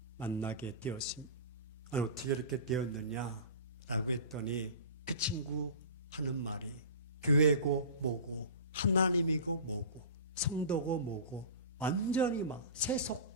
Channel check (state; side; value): inverted; both; correlation -0.35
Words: 만나게 되었습니다. 아니, 어떻게 이렇게 되었느냐라고 했더니 그 친구 하는 말이 교회고 뭐고 하나님이고 뭐고 성도고 뭐고 완전히 막